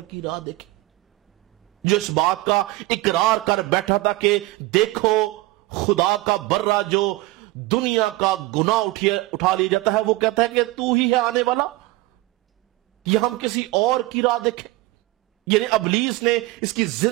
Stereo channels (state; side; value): quieter; left; 19.8 dB